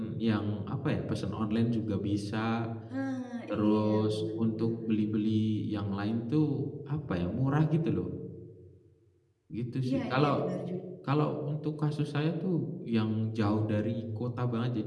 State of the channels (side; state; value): both; identical; correlation 1.00